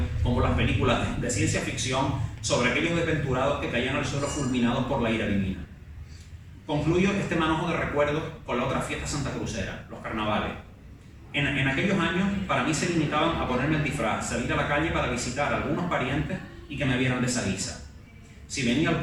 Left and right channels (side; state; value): both; identical; correlation 1.00